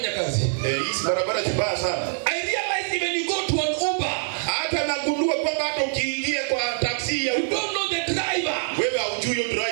kazi. Hizi barabara zibaya sana. I realize even you go to an Uber, Hata nagundua kwamba hata ukiingia kwa taksi ya you Uber, don't know the driver. wewe haujui huyo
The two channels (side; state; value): left; silent; digital silence